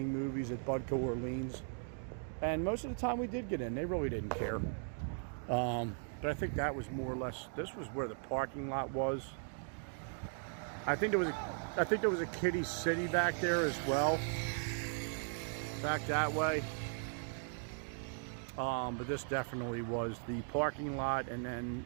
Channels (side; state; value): left; silent; 52 dB below the other